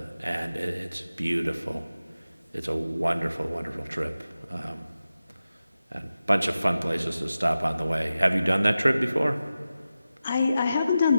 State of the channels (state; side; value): inverted; both; correlation -0.94